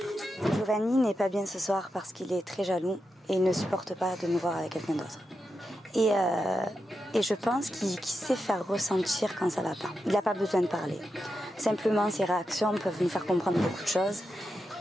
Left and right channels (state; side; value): normal; both; correlation 0.88